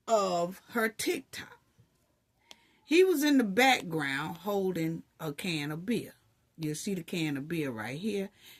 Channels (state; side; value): identical; both; correlation 1.00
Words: of her TikTok. He was in the background holding a can of beer. You'll see the can of beer right here.